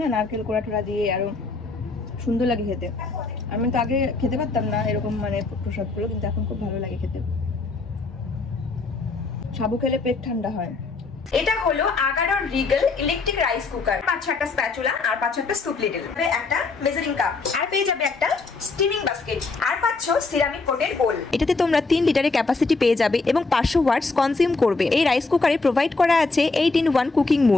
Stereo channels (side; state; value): right; quieter; 3.9 dB